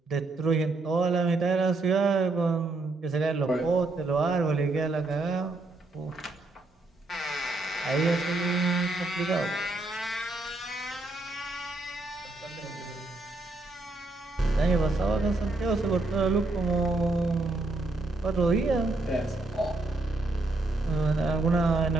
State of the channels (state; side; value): quieter; left; 3.0 dB